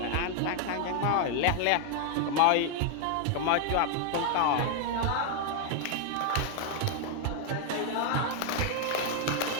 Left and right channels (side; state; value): both; different; correlation 0.00